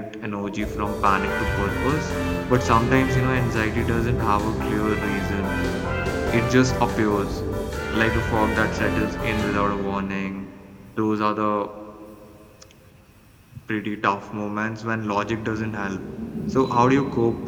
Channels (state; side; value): identical; both; correlation 1.00